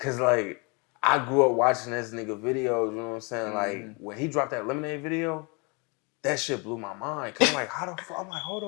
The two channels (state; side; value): quieter; right; 30.7 dB